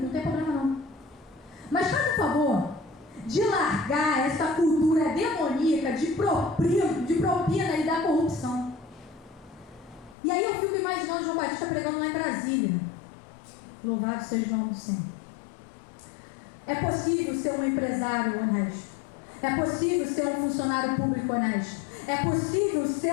não tem problema não. Mas faz o favor de largar essa cultura demoníaca de propina e da corrupção. E aí eu fico imaginando João Batista pregando lá em Brasília. Louvado seja o nome do Senhor. É possível ser um empresário honesto. É possível ser um funcionário público honesto. É possível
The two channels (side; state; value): right; drops out; at 10.2 s